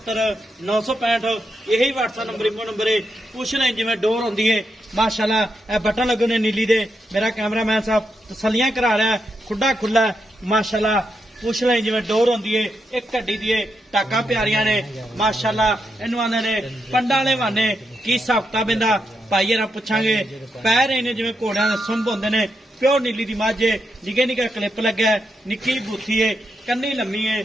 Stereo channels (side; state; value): both; normal; correlation 0.83